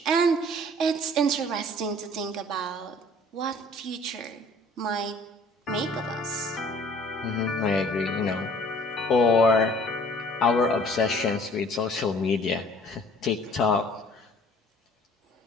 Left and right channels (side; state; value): both; normal; correlation 0.53